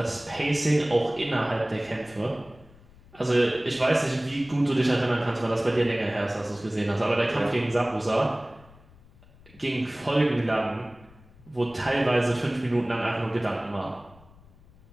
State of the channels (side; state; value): left; noise; rumble, 25 dB below the sound